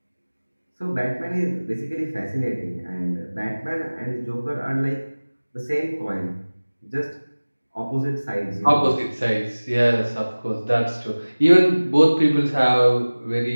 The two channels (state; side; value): inverted; both; correlation -1.00